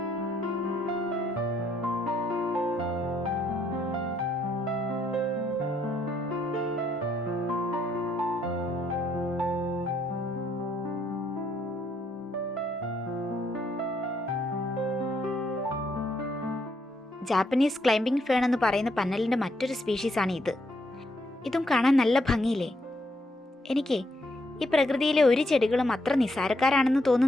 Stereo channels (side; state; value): both; normal; correlation 0.74